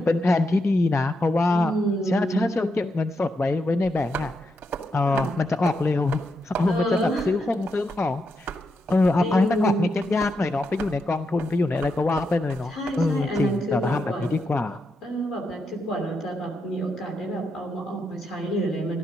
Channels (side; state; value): both; normal; correlation 0.83